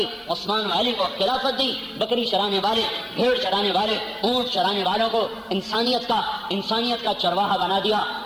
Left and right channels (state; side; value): identical; both; correlation 1.00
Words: عثمان و علی کو خلافت دی، بکری چرانے والے، بھیڑ چرانے والے، اونٹ چرانے والوں کو انسانیت کا چرواہا بنا دیا،